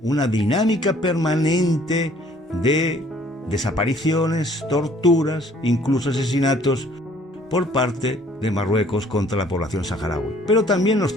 una dinámica permanente de desapariciones, torturas, incluso asesinatos por parte de Marruecos contra la población saharaui, pero también los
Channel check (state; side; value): normal; both; correlation 0.58